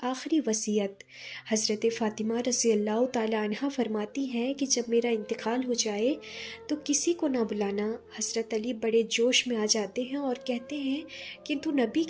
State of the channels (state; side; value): identical; both; correlation 1.00